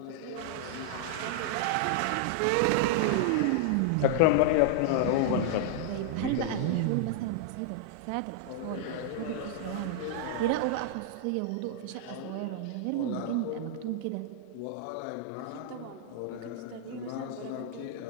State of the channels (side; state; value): both; different; correlation -0.01